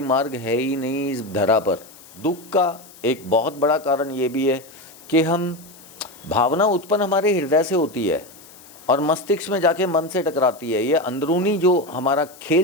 मार्ग है ही नहीं इस धरा पर। दुख का एक बहुत बड़ा कारण ये भी है कि हम भावना उत्पन्न हमारे हृदय से होती है और मस्तिष्क में जाके मन से टकराती है। ये अंदरूनी जो हमारा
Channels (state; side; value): noise; left; hiss, 22 dB below the sound